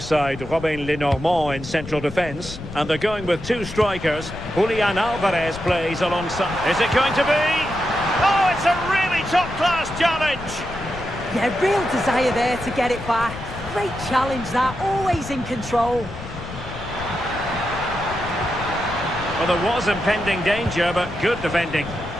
Robin Lenormand in central defence. And they're going with two strikers. Julian Alvarez plays alongside... Is it going to be? Oh, it's a really top-class challenge! Yeah, real desire there to get it back. Great challenge that, always in control. Well, there was impending danger, but good defending.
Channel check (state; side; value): noise; left; rumble, 12 dB below the sound